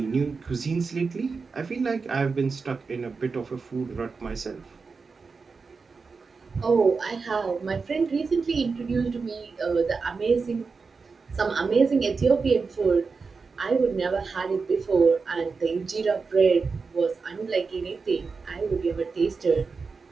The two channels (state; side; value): quieter; left; 4.7 dB